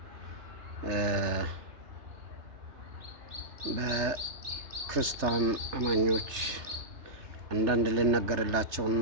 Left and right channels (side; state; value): left; late; 3.3 ms